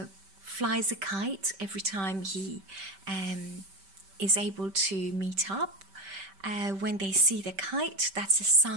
flies a kite every time he is able to meet up. When they see the kite, that's a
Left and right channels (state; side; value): late; left; 5.2 ms